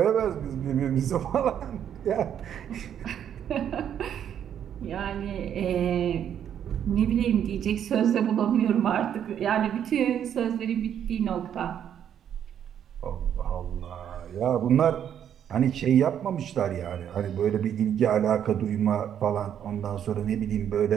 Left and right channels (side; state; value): left; quieter; 9.4 dB